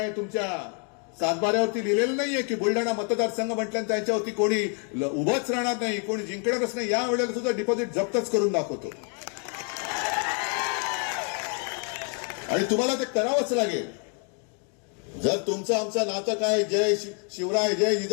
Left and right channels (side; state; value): right; quieter; 40.0 dB